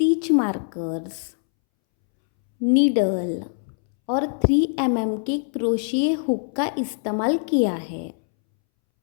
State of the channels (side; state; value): right; silent; 63 dB below the other